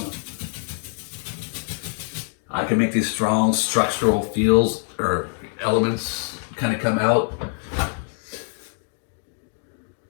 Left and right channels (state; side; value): silent; right; 62 dB below the other